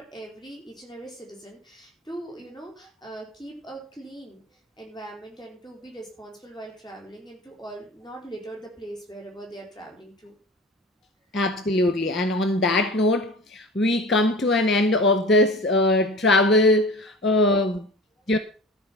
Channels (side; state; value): both; normal; correlation 0.37